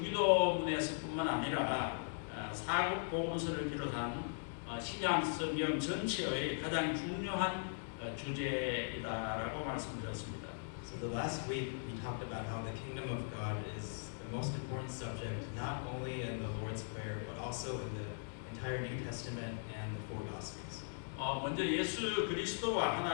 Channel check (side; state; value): right; silent; digital silence